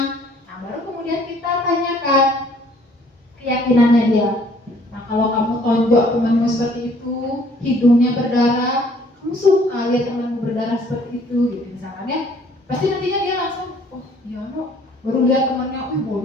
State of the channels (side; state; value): both; normal; correlation 0.59